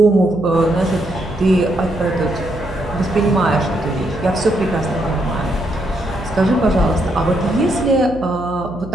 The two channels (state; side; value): noise; right; hum, 15 dB below the sound